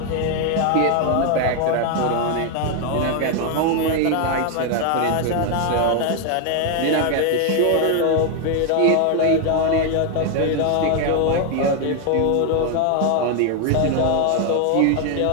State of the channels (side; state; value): both; different; correlation 0.01